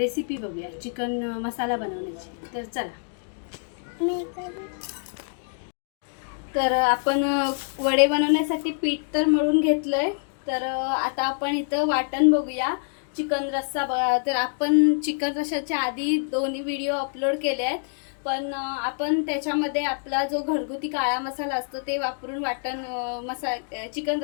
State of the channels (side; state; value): right; silent; 61 dB below the other